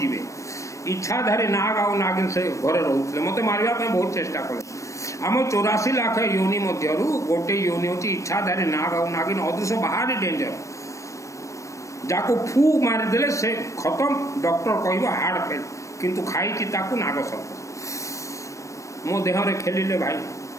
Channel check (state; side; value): late; right; 0.15 ms